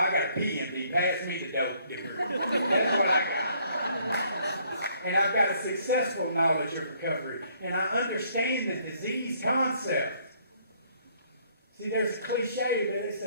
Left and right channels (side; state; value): both; inverted; correlation -0.65